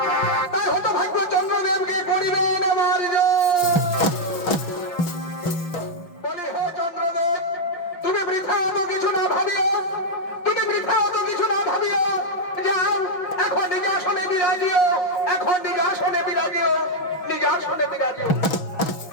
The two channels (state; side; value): late; right; 6.2 ms